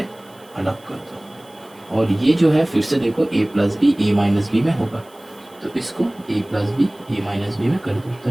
अलग कर दो, और ये जो है फिर से देखो a plus b a minus b में होगा, तो इसको a plus b a minus b में कर दो,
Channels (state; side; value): noise; right; hiss, 29 dB below the sound